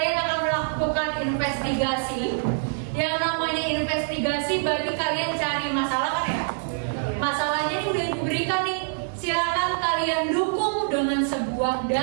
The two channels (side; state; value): left; silent; digital silence